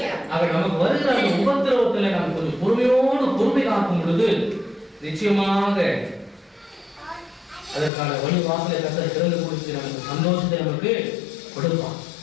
ஆக நமக்கு வருகிற அந்த உபத்திரவத்துல நம்ம கொஞ்சம் பொறுமை காக்கும் பொழுது நிச்சயமாக அதற்கான வழி வாசலை கர்த்தர் திறந்து கொடுத்து நமக்கு சந்தோஷத்தை நமக்கு கொடுப்பான்.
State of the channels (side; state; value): right; drops out; at 7.9 s